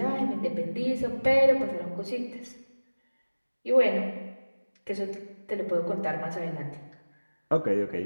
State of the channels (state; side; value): inverted; both; correlation -1.00